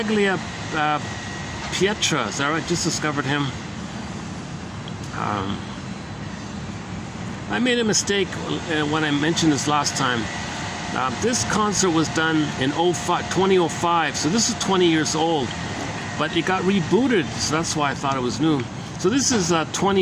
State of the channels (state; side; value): identical; both; correlation 1.00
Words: is that right? Just discovered him. I made a mistake when I mentioned this last time. This concert was done in 2005, so this is 20 years old, but it got rebooted, so that's why I thought it was new. So this is 20